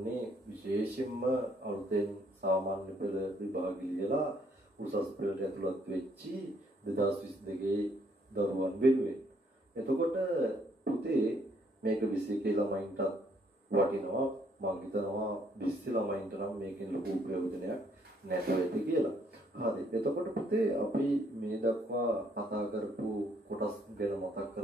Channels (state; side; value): normal; both; correlation 0.68